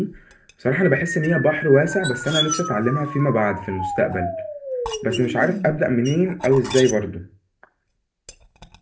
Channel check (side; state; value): both; identical; correlation 1.00